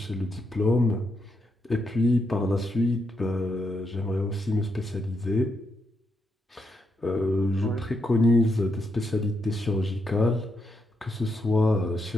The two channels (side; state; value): both; normal; correlation 0.81